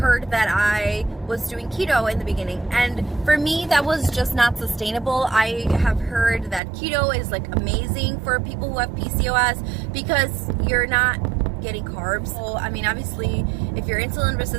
that I was doing keto in the beginning, and for me that was just not sustainable. I have heard that keto is like amazing for people who have PCOS because you're not getting carbs. So I mean, obviously if you're insulin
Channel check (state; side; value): drops out; left; at 6.6 s